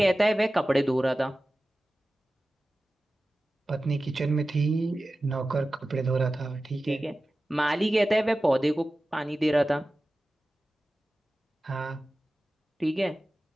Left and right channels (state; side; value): normal; both; correlation 0.95